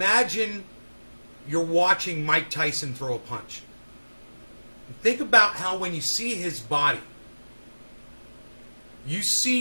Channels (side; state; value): both; inverted; correlation -1.00